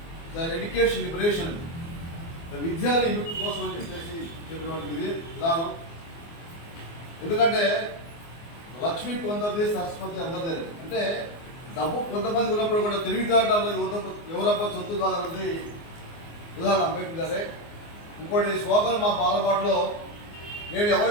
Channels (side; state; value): right; late; 24 ms